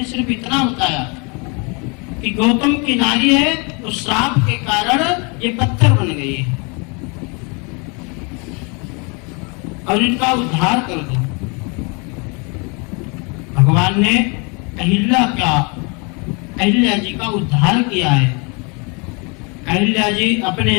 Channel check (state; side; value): quieter; right; 32.0 dB